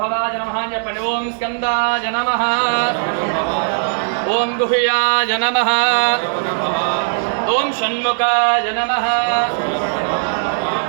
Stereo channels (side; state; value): left; silent; 63 dB below the other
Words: భవాయ నమః చెప్పండి. ఓం స్కందాయ నమః. ఓం గుహ్యాయ నమః. ఓం షణ్ముఖాయ నమః.